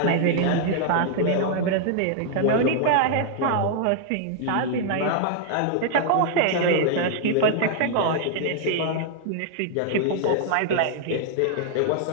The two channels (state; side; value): different; both; correlation 0.00